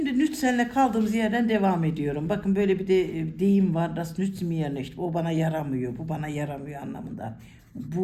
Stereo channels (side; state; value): both; identical; correlation 1.00